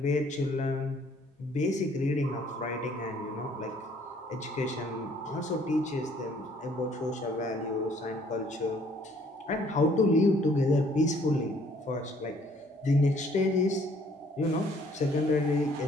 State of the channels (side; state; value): both; normal; correlation 0.61